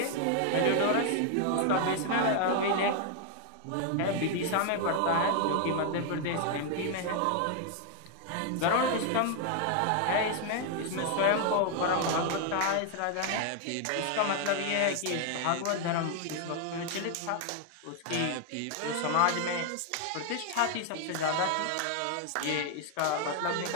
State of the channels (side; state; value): both; different; correlation 0.00